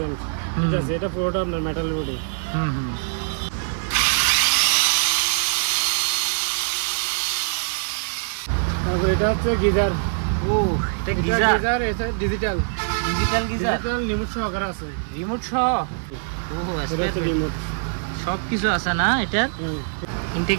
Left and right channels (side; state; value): left; silent; digital silence